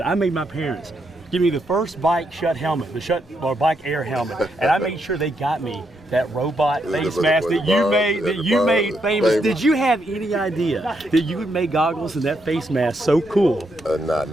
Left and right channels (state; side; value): normal; both; correlation 0.79